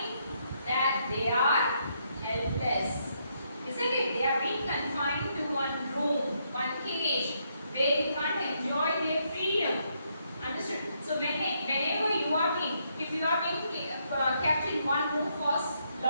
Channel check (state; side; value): inverted; both; correlation -0.76